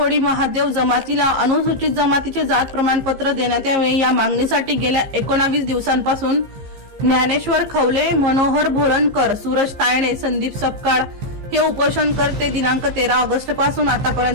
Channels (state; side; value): late; left; 15 ms